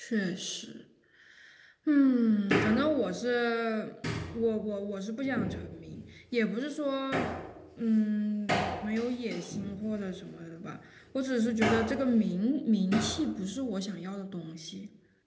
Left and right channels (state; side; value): identical; both; correlation 1.00